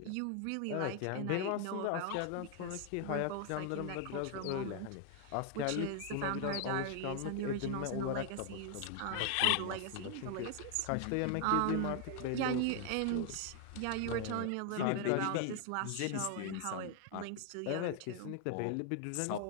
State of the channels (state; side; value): different; both; correlation 0.00